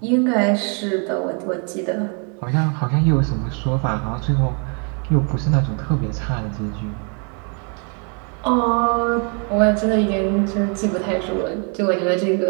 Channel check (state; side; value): quieter; left; 38.5 dB